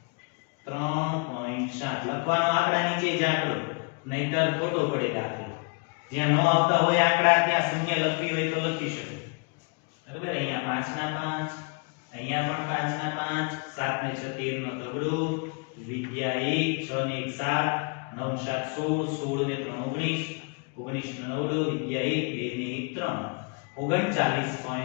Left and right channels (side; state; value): right; quieter; 34.4 dB